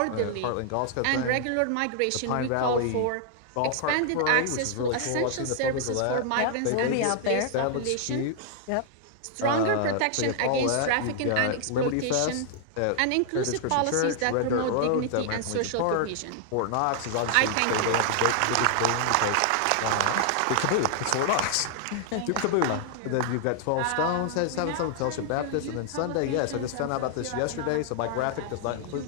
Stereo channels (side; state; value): both; different; correlation 0.00